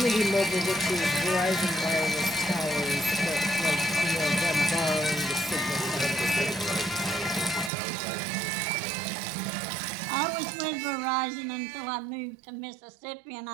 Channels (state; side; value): drops out; left; at 7.7 s